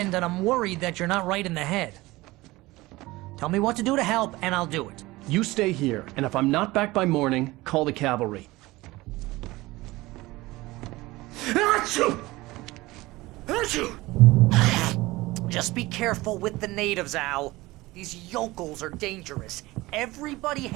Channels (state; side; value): quieter; left; 19.9 dB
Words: and I'm worried that you're not right in the head. Tell me what to do to help, and I'll do it. You stay here, and if I'm not back by morning, call the cavalry. Achoo! Achoo! Just be careful with the natives, Al. These yokels are dangerous. Everybody